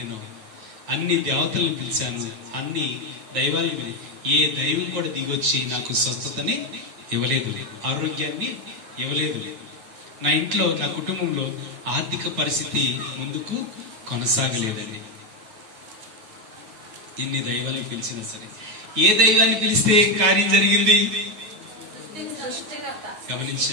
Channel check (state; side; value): late; left; 9.3 ms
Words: అన్ని దేవతలను పిలిచాను, అన్ని దైవాలను. ఏ దైవం కూడా దిగొచ్చి నాకు స్వస్థతని ఇవ్వలేదు, ఆరోగ్యాన్ని ఇవ్వలేదు. నా ఇంట్లో, నా కుటుంబంలో ఆర్థిక పరిస్థితి ముందుకు కొనసాగలేదండి. ఇన్ని దైవాన్ని పిలిచినా సరే, ఏ దైవాన్ని పిలిస్తే కార్యం జరిగింది?